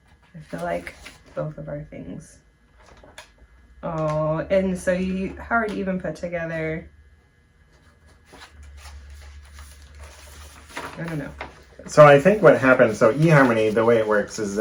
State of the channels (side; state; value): both; identical; correlation 1.00